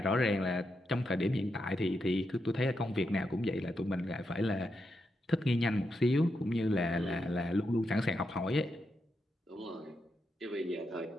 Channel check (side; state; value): both; normal; correlation 0.84